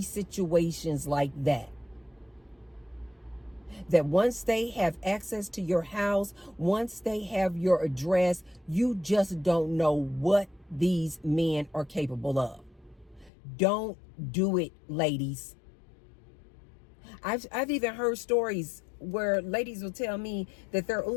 situations like that. That once they have access to your house, once they have your address, you just don't know what these men are capable of. Don't do it, ladies. I've even heard stories where ladies will tell me that their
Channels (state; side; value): drops out; right; at 13.3 s